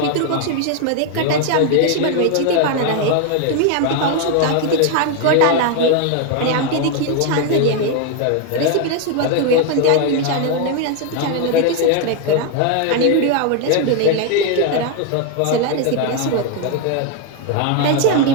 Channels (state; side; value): different; both; correlation 0.01